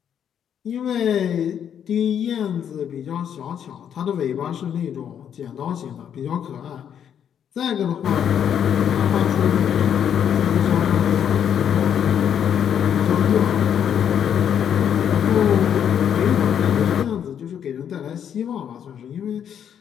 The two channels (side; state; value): right; quieter; 8.8 dB